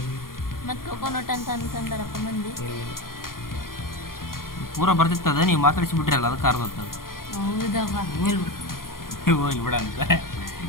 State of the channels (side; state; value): right; late; 0.91 ms